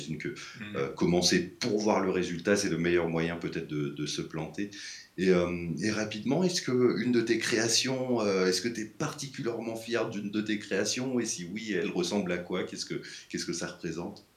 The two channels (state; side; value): identical; both; correlation 1.00